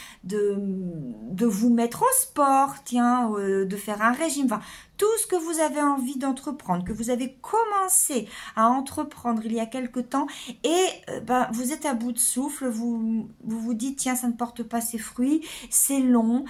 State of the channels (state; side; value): identical; both; correlation 1.00